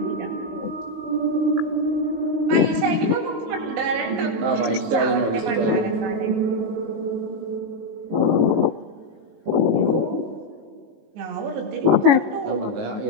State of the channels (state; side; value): late; left; 18 ms